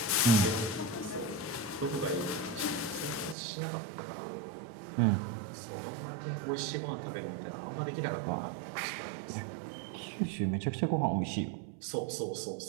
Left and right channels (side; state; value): left; drops out; at 3.4 s